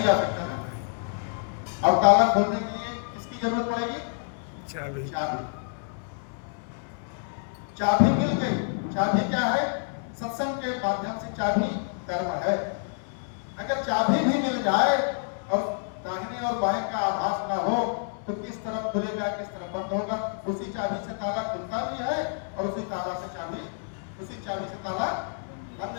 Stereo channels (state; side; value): silent; right; 59 dB below the other